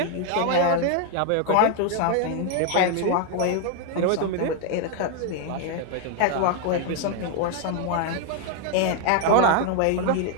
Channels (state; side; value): different; both; correlation 0.01